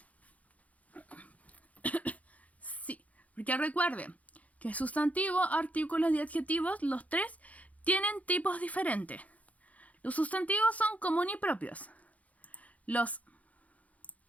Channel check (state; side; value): late; right; 0.069 ms